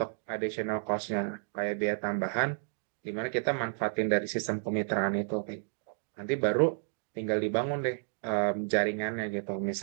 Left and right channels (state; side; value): silent; left; digital silence